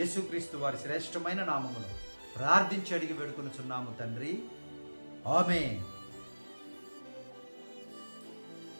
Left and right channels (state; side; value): inverted; both; correlation -1.00